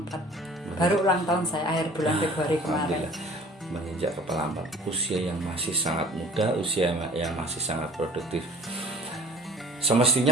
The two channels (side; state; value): both; normal; correlation 0.48